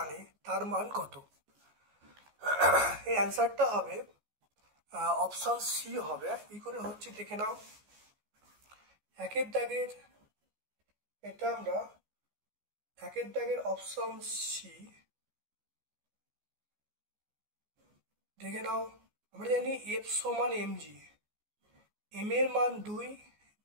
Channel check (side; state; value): left; late; 14 ms